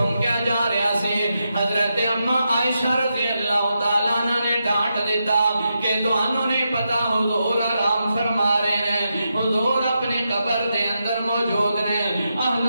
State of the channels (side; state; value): both; inverted; correlation -0.86